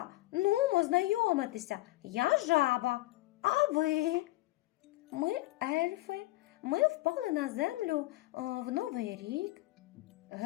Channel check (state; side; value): quieter; right; 18.9 dB